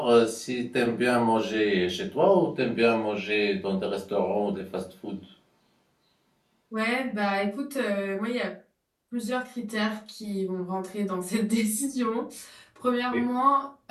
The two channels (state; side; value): identical; both; correlation 1.00